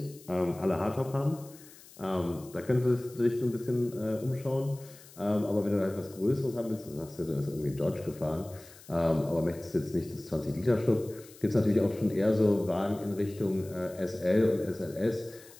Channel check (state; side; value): noise; left; hiss, 21 dB below the sound